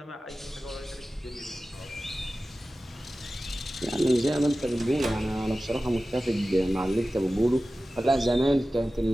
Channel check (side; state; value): both; normal; correlation 0.95